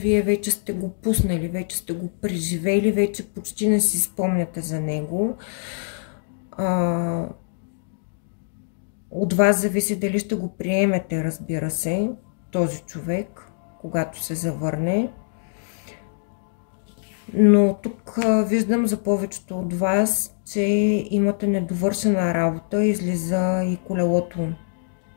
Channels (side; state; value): right; silent; digital silence